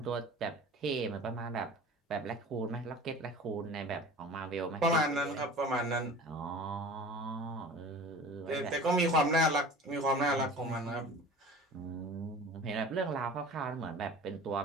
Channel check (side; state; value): both; normal; correlation 0.40